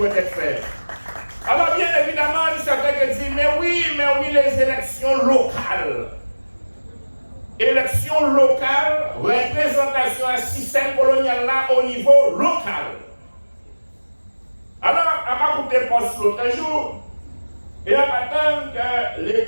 être fait. Alors bien évidemment, il y a certains qui disent, mais oui, les élections locales. Élections locales, représentation à système colonial là au niveau local. Alors, à écouter poste l'autre jour, et on attend que les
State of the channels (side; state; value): both; inverted; correlation -1.00